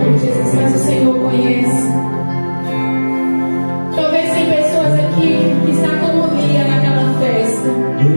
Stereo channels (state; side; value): inverted; both; correlation -1.00